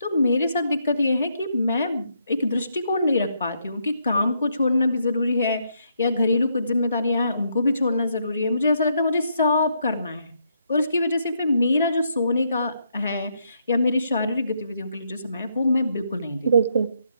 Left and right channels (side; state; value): both; inverted; correlation -0.76